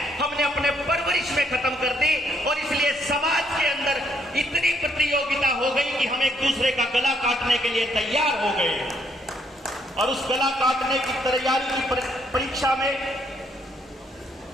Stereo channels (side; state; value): both; normal; correlation 0.71